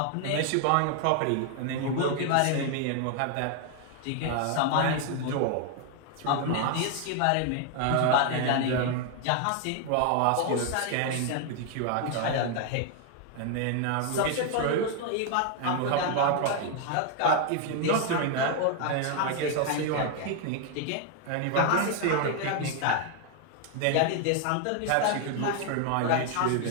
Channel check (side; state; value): both; different; correlation 0.00